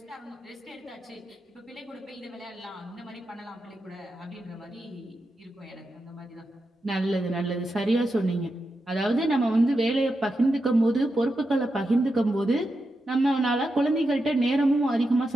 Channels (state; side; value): normal; both; correlation 0.88